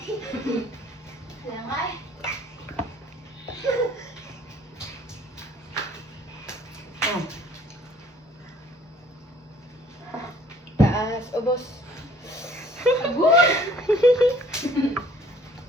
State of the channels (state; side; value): normal; both; correlation 0.56